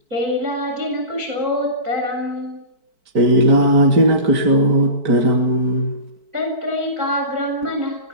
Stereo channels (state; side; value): late; left; 4.5 ms